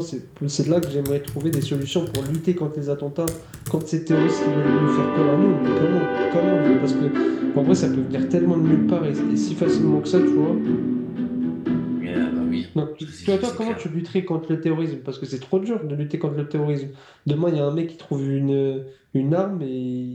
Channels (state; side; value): identical; both; correlation 1.00